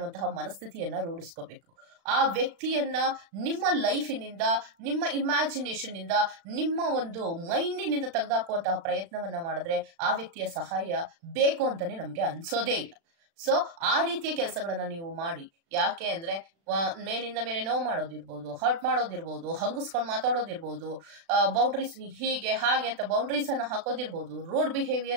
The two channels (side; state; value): left; late; 36 ms